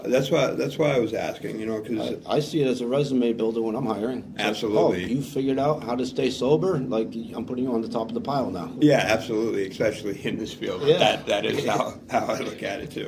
that's why I was asking, because I see it as a resume builder when I'm hiring. It's absolutely. Like, oh, you figured out how to stay sober? I'm putting you on the top of the pile now. Yeah, absolutely, especially in this field. Yeah. That is how I look at it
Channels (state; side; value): identical; both; correlation 1.00